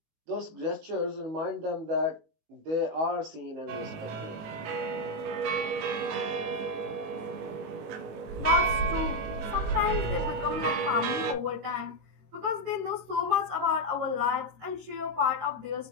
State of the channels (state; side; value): late; left; 19 ms